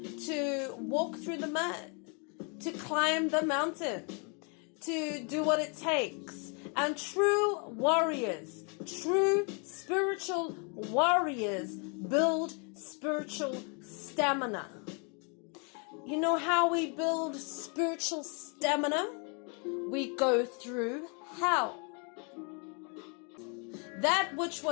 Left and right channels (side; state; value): right; quieter; 36.4 dB